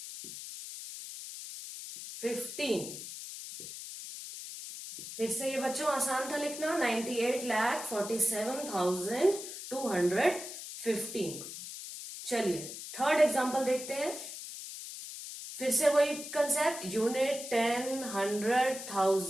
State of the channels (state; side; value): noise; left; hiss, 10 dB below the sound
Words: फिर से ये बच्चों आसान था लिखना, 98,47,215। चलिए थर्ड एग्जांपल देखते हैं। फिर से वही कंसेप्ट, यूनिट, 10, 100,